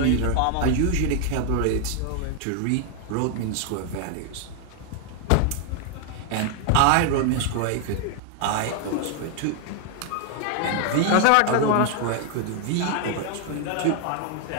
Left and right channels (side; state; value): both; different; correlation 0.00